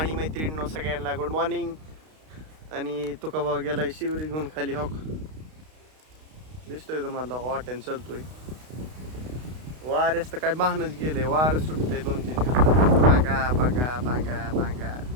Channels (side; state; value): left; late; 32 ms